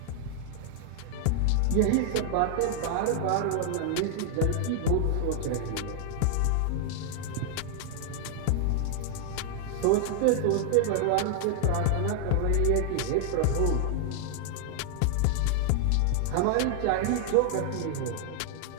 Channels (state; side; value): different; both; correlation -0.01